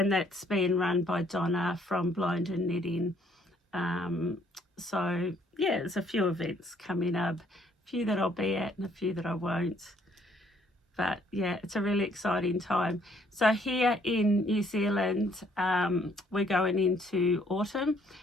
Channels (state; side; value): normal; both; correlation 0.65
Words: that's being run by Donna from Blind and Knitting. So yeah, there's a few events coming up, a few that I'll be at and a few that I won't. But yeah, it's a really exciting time. So here in New Zealand, we're going into autumn,